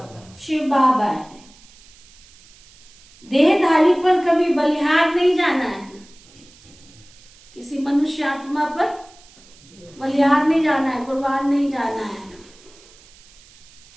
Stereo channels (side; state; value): right; noise; hiss, 25 dB below the sound